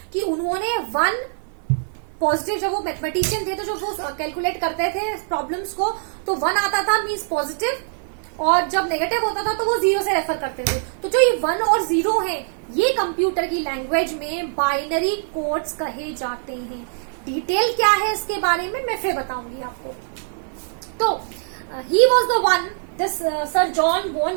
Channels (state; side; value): silent; left; 57 dB below the other